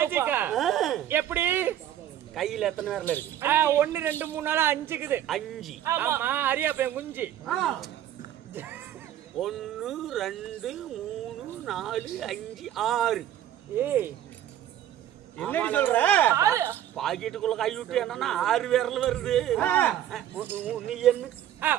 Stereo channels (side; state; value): left; quieter; 11.5 dB